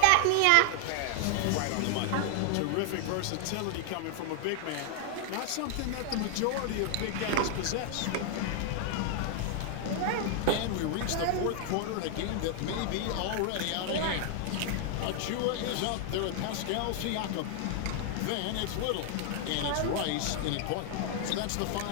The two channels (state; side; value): different; both; correlation 0.00